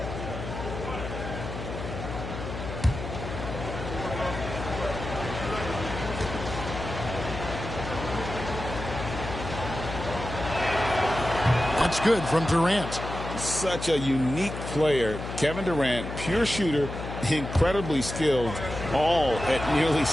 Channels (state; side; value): noise; left; hum, 7 dB below the sound